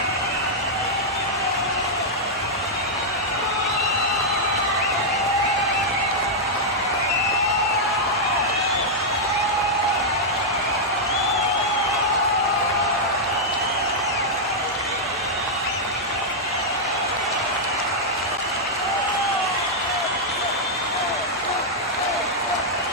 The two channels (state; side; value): normal; both; correlation -0.05